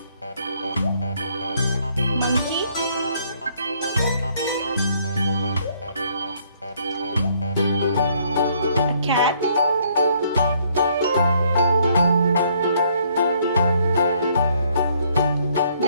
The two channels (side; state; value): both; inverted; correlation -0.66